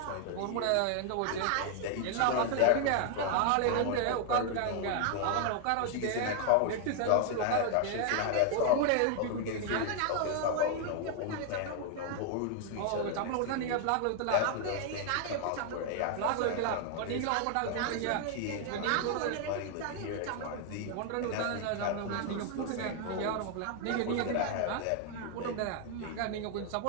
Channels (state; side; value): different; both; correlation 0.00